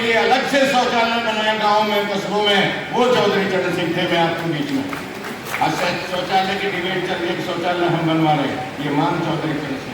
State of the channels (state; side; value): identical; both; correlation 1.00